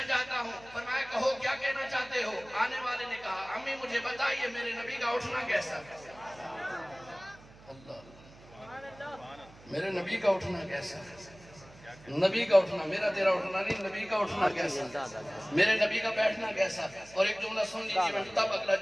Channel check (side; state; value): right; noise; hum, 22 dB below the sound